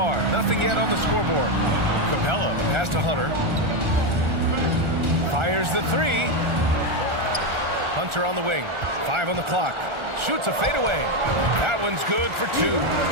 Nothing yet on the scoreboard. Capella, pass to Hunter. Fires the 3. Hunter on the wing. 5 on the clock. Shoots a fadeaway. That one's good for 2.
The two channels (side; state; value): left; late; 1.4 ms